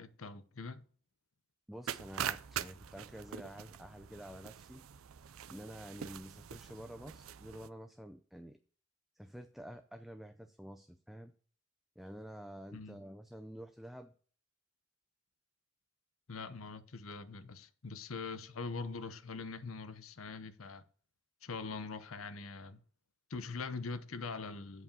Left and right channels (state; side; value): normal; both; correlation 0.38